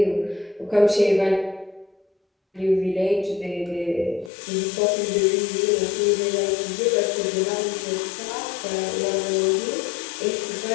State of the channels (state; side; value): drops out; right; at 4.3 s